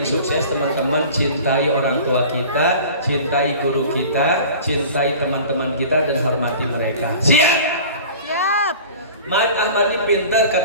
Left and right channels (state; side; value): inverted; both; correlation -0.41